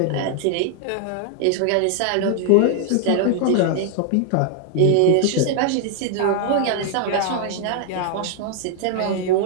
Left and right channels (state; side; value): different; both; correlation 0.00